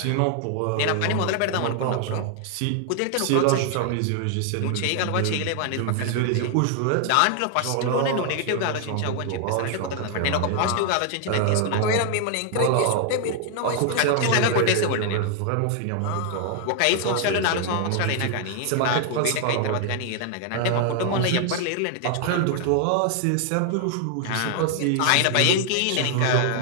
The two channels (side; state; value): both; different; correlation 0.00